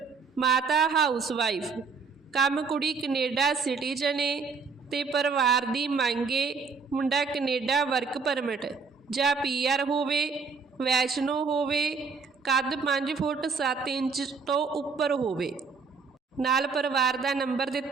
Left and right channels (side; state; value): left; quieter; 5.0 dB